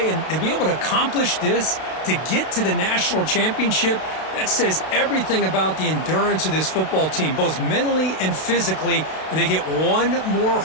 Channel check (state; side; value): late; right; 32 ms